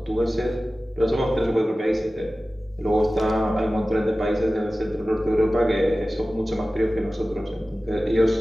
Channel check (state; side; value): normal; both; correlation 0.96